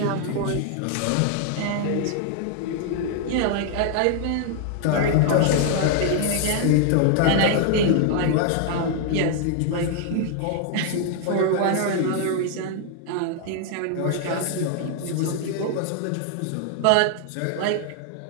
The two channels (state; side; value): different; both; correlation 0.00